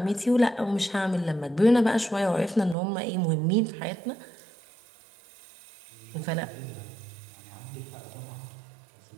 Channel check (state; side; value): drops out; left; at 2.8 s